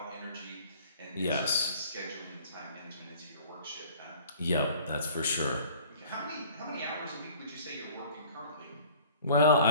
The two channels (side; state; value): both; inverted; correlation -0.50